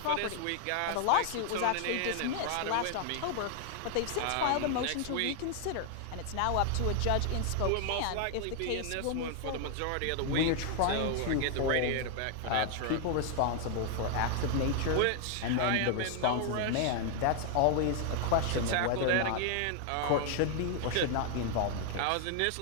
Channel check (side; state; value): both; different; correlation 0.00